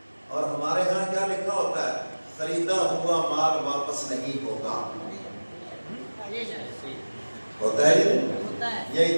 اور ہمارے ہاں کیا لکھا ہوتا ہے، خریدا ہوا مال واپس نہیں ہوگا، ہوتا ہے یہ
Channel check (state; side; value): inverted; both; correlation -1.00